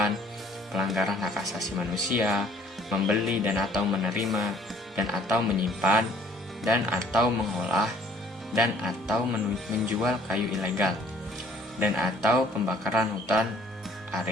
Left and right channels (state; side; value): normal; both; correlation 0.57